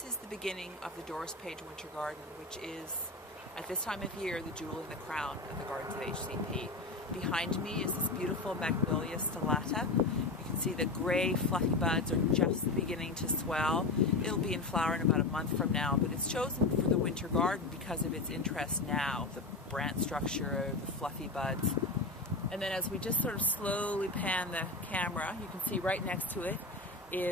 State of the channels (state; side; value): quieter; right; 3.4 dB